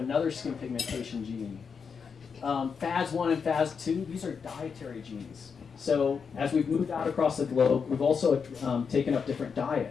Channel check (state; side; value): quieter; right; 6.0 dB